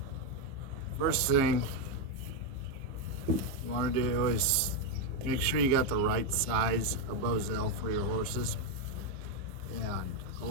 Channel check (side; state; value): left; late; 15 ms